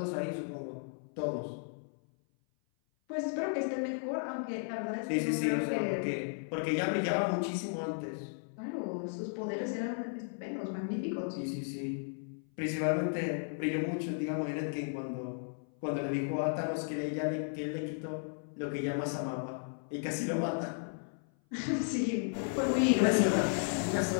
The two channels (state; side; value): silent; right; 55 dB below the other